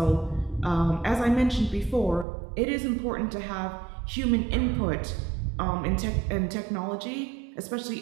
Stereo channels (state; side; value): drops out; left; at 2.2 s